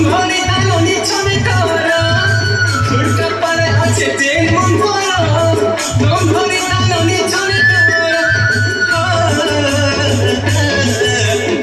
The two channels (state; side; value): identical; both; correlation 1.00